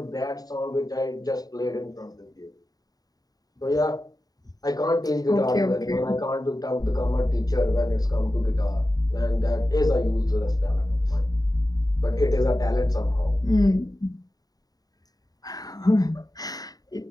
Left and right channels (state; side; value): late; right; 0.18 ms